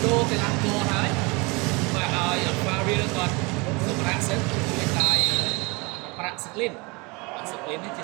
đô thì làm cô hái và ở pha riêng còn sự bạc sức hiện tại bạc sức lên thì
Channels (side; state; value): left; quieter; 27.1 dB